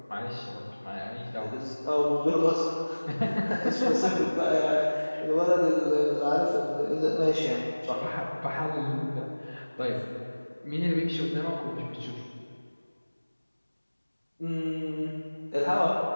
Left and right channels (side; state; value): both; inverted; correlation -1.00